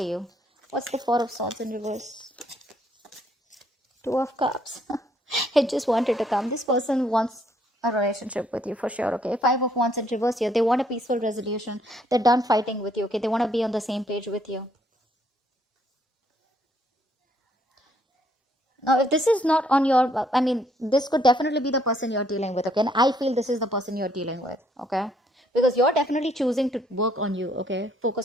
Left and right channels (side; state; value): both; normal; correlation 0.68